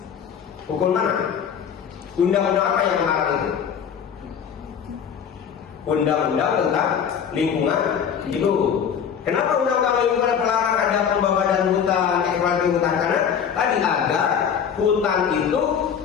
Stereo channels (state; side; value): quieter; right; 7.7 dB